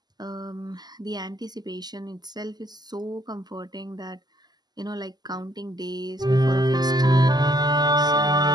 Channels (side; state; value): left; late; 0.20 ms